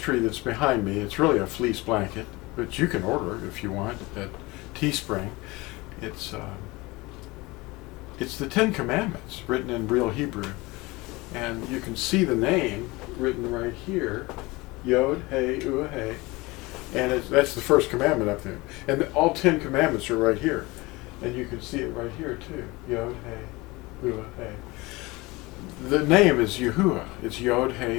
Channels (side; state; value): right; quieter; 22.8 dB